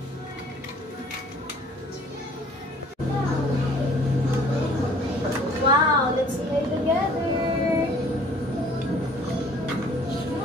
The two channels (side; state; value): both; normal; correlation 0.53